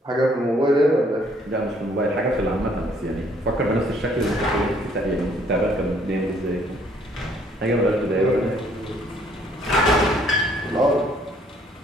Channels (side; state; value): both; normal; correlation 0.63